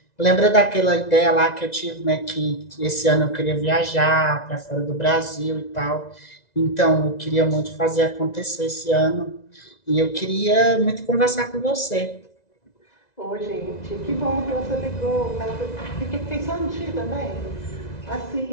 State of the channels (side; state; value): right; late; 1.9 ms